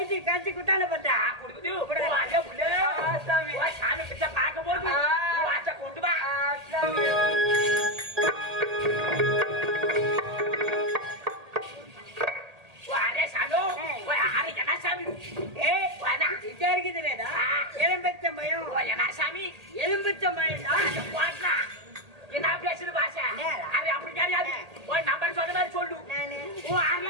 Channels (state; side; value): late; left; 1.8 ms